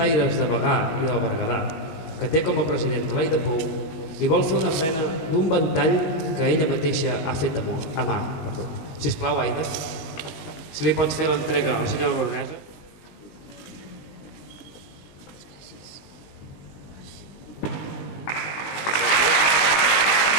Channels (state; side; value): late; right; 19 ms